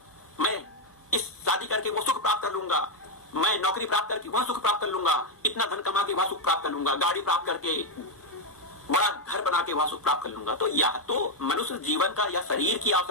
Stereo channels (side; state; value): both; normal; correlation 0.02